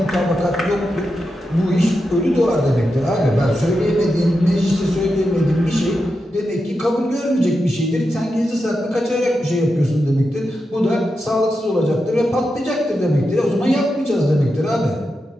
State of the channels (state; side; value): normal; both; correlation 0.88